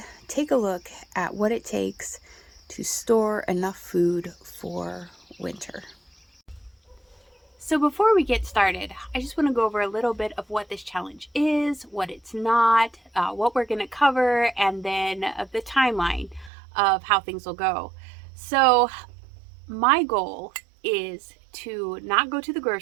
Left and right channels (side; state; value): left; drops out; at 16.5 s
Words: take a look at what it takes to store enough food for winter. So before we get started, I just want to go over a little bit of what this challenge is, what it's not, what we're going to cover, and then the timeline of how things will go. So my goal is to not go to the